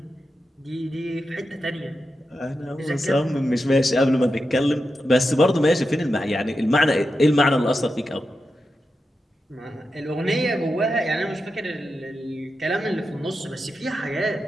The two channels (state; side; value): normal; both; correlation 0.89